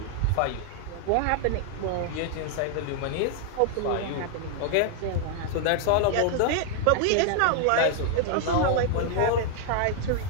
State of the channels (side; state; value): both; different; correlation 0.00